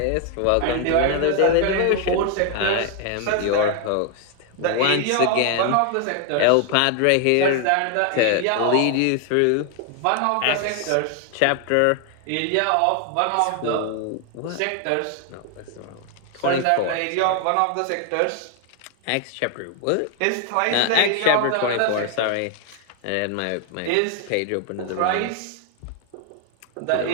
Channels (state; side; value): different; both; correlation 0.00